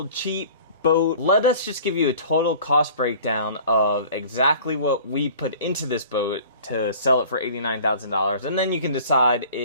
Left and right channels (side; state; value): both; inverted; correlation -0.46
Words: cheap boat, let us just give you a total cost breakdown of exactly what we put into this boat to sell it for $89,000, and then you can decide